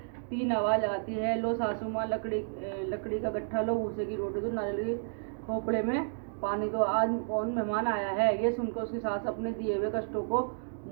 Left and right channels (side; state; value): left; silent; digital silence